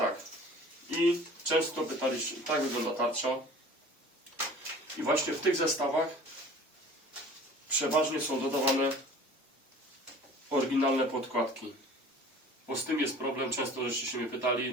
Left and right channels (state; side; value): normal; both; correlation 0.45